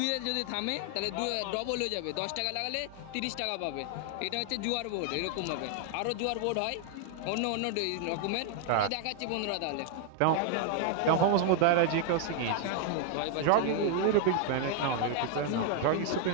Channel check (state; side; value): different; both; correlation 0.00